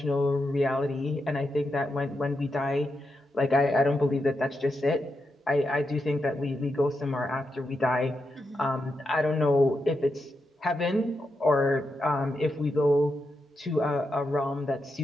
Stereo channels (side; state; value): both; normal; correlation 0.85